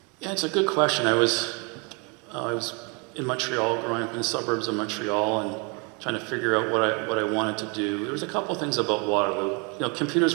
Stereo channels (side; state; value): left; quieter; 32.6 dB